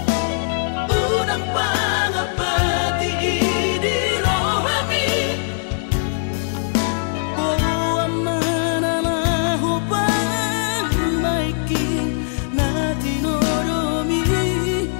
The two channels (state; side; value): silent; right; digital silence